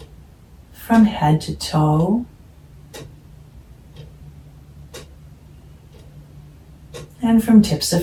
from head to toe. And from tips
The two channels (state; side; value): identical; both; correlation 1.00